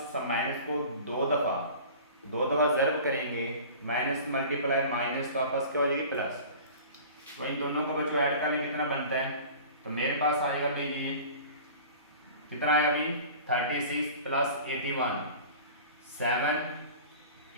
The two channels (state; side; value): inverted; both; correlation -0.41